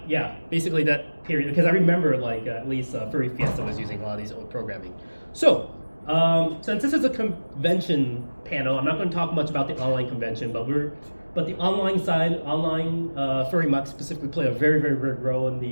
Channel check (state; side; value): inverted; both; correlation -1.00